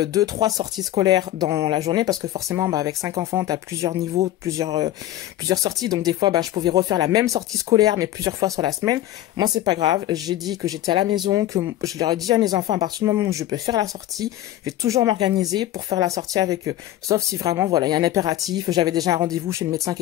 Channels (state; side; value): quieter; right; 13.9 dB